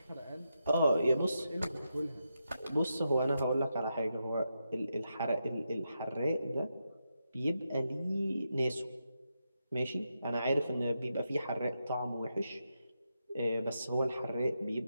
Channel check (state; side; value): inverted; both; correlation -0.86